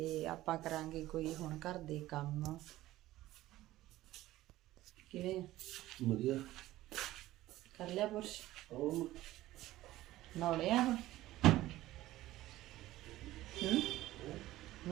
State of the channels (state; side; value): quieter; left; 15.8 dB